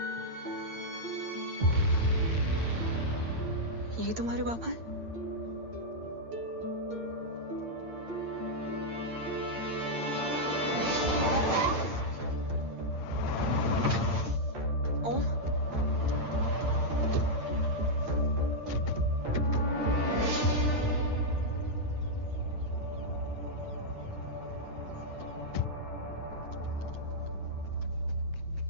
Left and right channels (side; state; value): left; late; 8.8 ms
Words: ये तुम्हारे बाबा हैं? ओम,